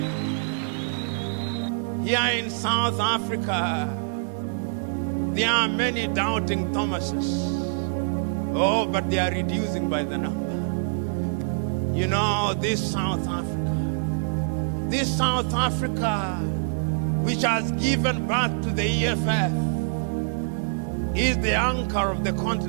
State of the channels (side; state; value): left; silent; digital silence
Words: Here in South Africa, there are many doubting Thomases. Oh, but they are reducing by the number. You know, this South Africa, which has given birth to the EFF, is the anchor of the